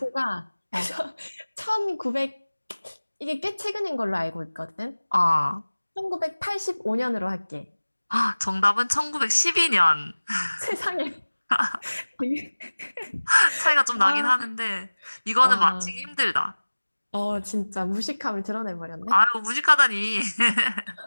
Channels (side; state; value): both; inverted; correlation -1.00